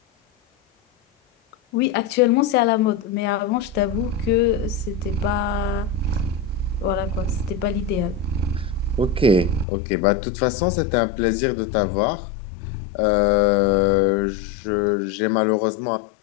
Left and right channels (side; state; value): right; drops out; at 9.7 s